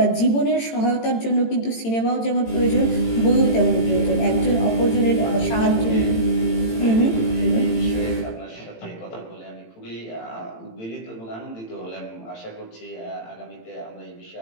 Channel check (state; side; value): late; right; 18 ms